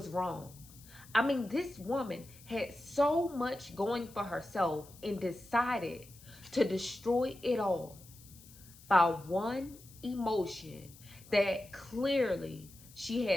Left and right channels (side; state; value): left; noise; hiss, 22 dB below the sound